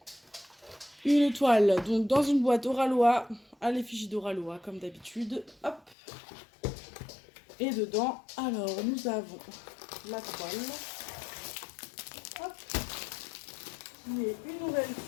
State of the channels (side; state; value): right; drops out; at 6.0 s